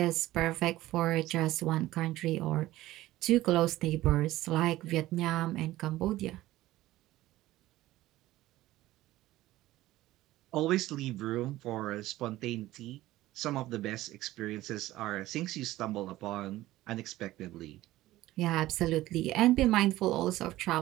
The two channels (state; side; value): quieter; left; 16.2 dB